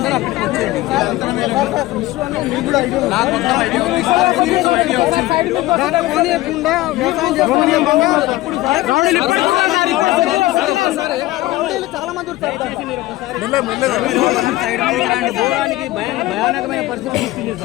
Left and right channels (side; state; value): right; quieter; 17.7 dB